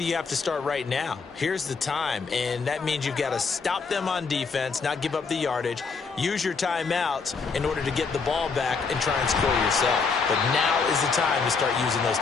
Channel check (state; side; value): quieter; right; 4.9 dB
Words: have to start right now. Here's the time, and that means you've got to stop them on defense, not give up the yardage, use your timeouts in order to get the ball back and try and score yourself. But now is the time to start using those